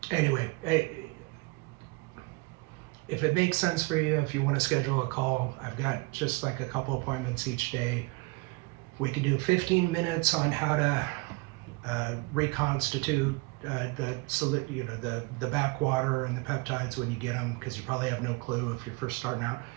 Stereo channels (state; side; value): quieter; left; 26.1 dB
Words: anyway, if it makes sense for you, if you want to schedule a call, I've got just like a couple appointments each day. We could do 15 minutes on how to reconstitute the backwater and the peptides when you get them, because you probably have no clue if you're first starting out.